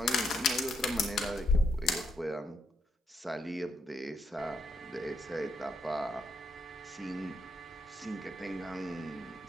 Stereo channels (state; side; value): normal; both; correlation 0.78